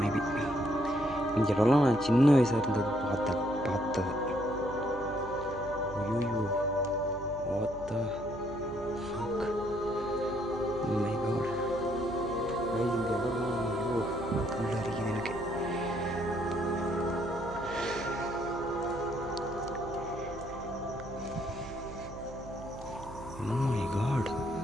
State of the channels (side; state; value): right; noise; hum, 15 dB below the sound